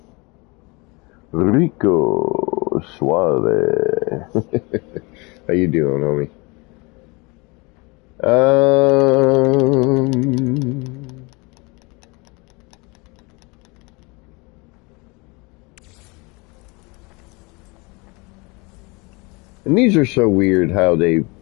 Rico Suave. How you doing, homie? And these are so weird how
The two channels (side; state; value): right; quieter; 27.3 dB